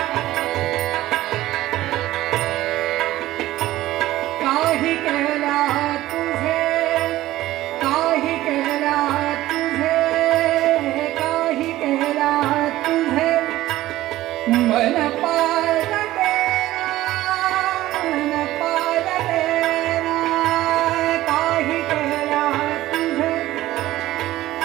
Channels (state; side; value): quieter; left; 15.7 dB